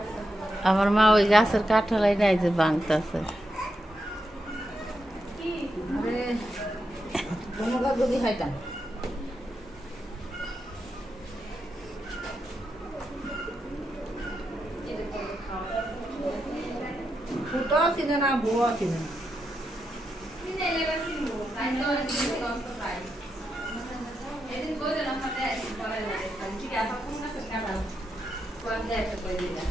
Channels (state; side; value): normal; both; correlation 0.85